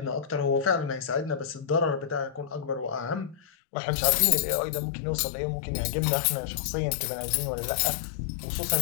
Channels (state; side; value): drops out; right; at 3.4 s